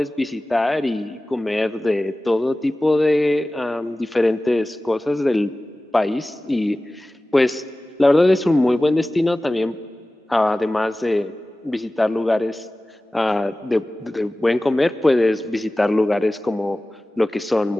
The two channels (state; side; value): normal; both; correlation 0.97